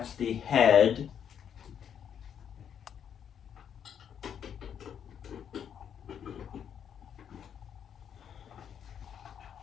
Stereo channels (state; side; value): quieter; right; 8.5 dB